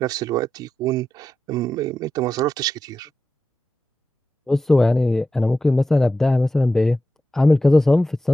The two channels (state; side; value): normal; both; correlation 0.90